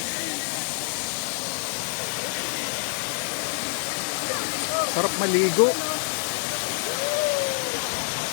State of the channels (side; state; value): right; silent; digital silence